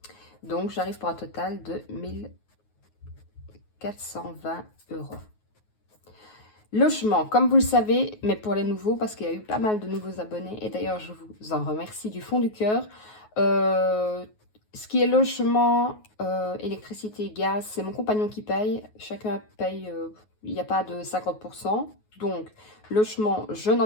Donc, j'arrive pour un total de 1420 €. Logement, comme vous le savez, mais pour les nouveaux, parce qu'il y a eu pas mal de nouveaux abonnés, et d'ailleurs, je vous en remercie du fond du cœur. Ce qui est logement, électricité, gaz, c'est mon compagnon qui paye. Chacun paye, il n'y a pas de 50%. Donc, logement, je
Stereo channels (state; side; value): late; right; 9.4 ms